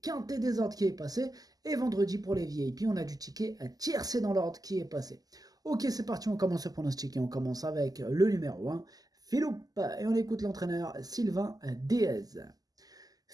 quintet désordre qui est passé. Et vendredi, pour les VIP, on a du ticket tiercé dans l'ordre qui est passé. Ok, c'est parti, on commence le pronostic et on commence avec le numéro 1, Philippe. Et on écoute l'entraîneur Sylvain Déez.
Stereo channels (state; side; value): late; left; 0.18 ms